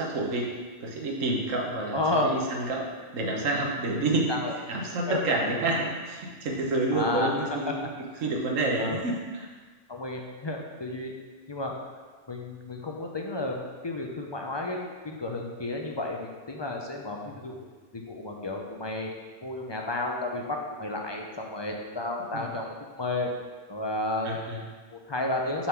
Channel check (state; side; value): normal; both; correlation -0.06